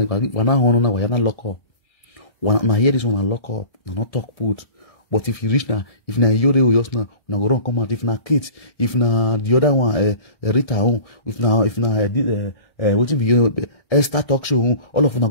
wana hono na wa na lock up. Wana hear this one and lock up. Na not talk put. But if you reach now, if na Yore or just now, na go run come out. If na kids, if na the other one, Rita home, if na waiting be Esther talk show, all of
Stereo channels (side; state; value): right; late; 1.6 ms